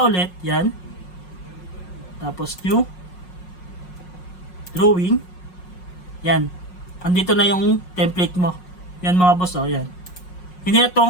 ulit, yan. Tapos new. Drawing. Yan. Andito na yung template mo. Yan mga boss, oh, yan. Hindi na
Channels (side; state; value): right; late; 5.5 ms